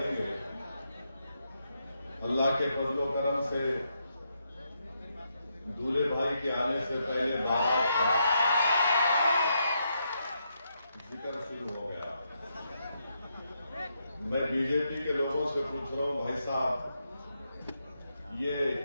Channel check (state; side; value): inverted; both; correlation -0.80